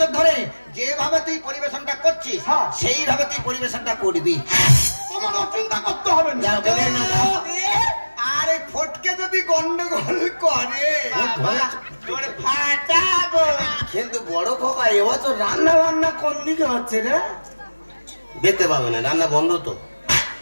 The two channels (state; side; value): inverted; both; correlation -1.00